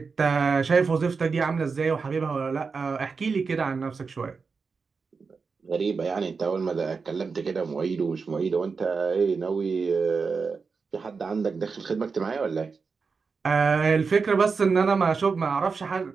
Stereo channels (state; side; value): quieter; left; 4.9 dB